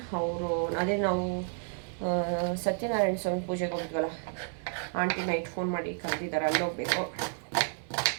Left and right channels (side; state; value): left; silent; 57 dB below the other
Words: ಅವರು ಅದೇ ನಾವು ಸತ್ಯನಾರಾಯಣ ಸ್ವಾಮಿ ಪೂಜೆಗೆ ಹೋಗಿದ್ವಲ್ಲ, ಆಂಟಿ ನೈಟ್ ಫೋನ್ ಮಾಡಿ ಕರೆದಿದ್ದಾರೆ, ಅಲ್ಲಿ ಹೋಗ್ಬೇಕು.